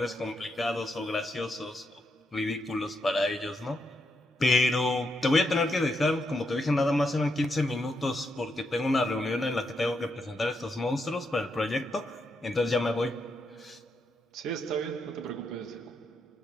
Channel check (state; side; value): normal; both; correlation 0.81